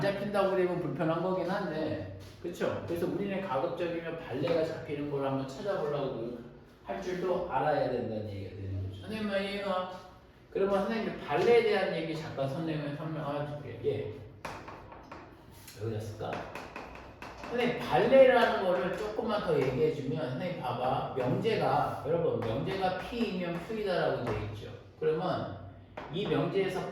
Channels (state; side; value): identical; both; correlation 1.00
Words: 되면 불편한 거긴 한데 그쵸? 그래서 우리는 가급적이면 발레가 잡히는 걸 한번 찾아보려고 할 줄도 알아야 된다는 얘기가 되는 거죠. 선생님 말 이해가? 그러면 선생님이 발레에 대한 얘기 잠깐 선생님이 설명할게요. 여기다 쓸까? 선생님 발레라는 거를 조금만 더 얘기해주면 선생님 봐봐. 명제가 여러분 명제가 P이면 Q이다라고 되어 있죠. 그러면 이 명제에서